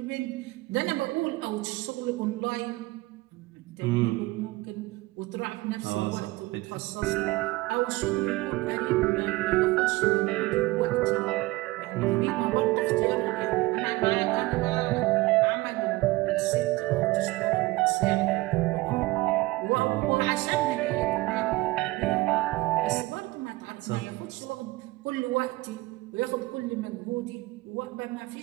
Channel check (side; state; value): left; quieter; 20.6 dB